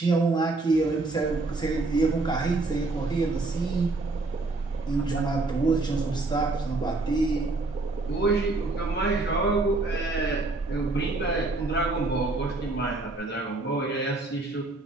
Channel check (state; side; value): quieter; left; 3.3 dB